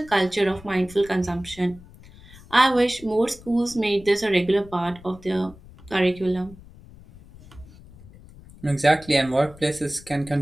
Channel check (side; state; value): left; noise; rumble, 21 dB below the sound